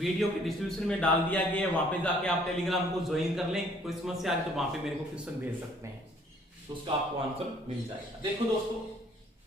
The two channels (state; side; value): normal; both; correlation 0.60